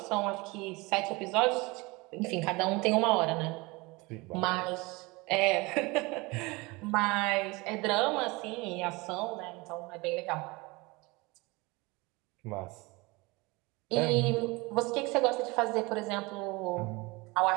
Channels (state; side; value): quieter; left; 24.5 dB